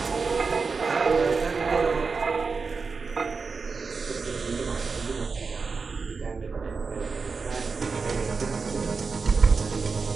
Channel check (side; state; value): left; quieter; 4.7 dB